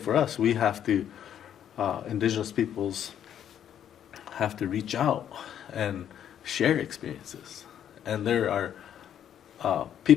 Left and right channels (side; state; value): right; quieter; 9.8 dB